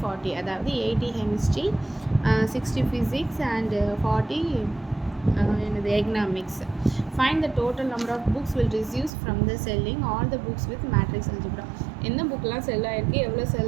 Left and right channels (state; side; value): drops out; left; at 9.1 s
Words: 40, அதாவது 80 chemistry, 60 physics and 40 economics. Find the total number of books will receive from the selling all the books with matrix algebra. என்ன புக்லாம் செல் ஆகிருக்கு, எவ்வளோ